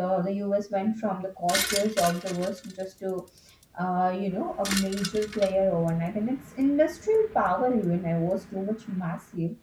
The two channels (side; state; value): both; identical; correlation 1.00